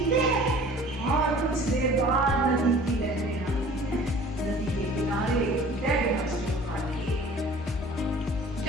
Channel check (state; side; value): normal; both; correlation 0.48